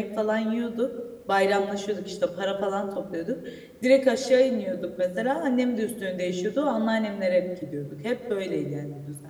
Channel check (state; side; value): identical; both; correlation 1.00